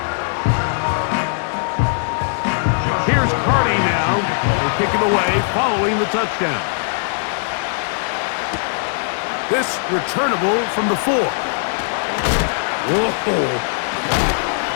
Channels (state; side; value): silent; right; digital silence